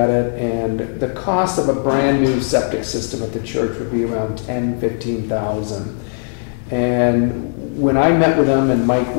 it, and the cost of a brand new septic system at the church would be around $10,000–15,000. And when I met with them and Mike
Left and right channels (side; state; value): right; silent; digital silence